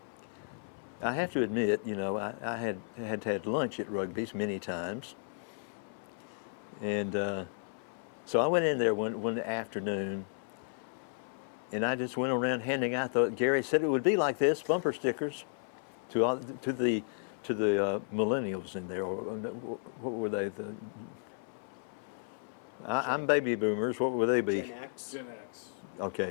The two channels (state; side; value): silent; right; 55 dB below the other